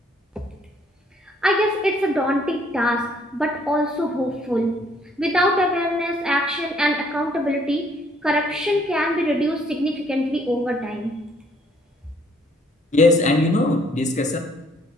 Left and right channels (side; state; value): both; normal; correlation 0.64